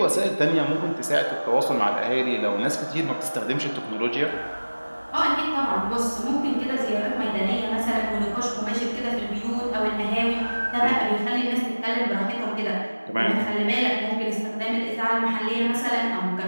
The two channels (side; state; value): both; inverted; correlation -1.00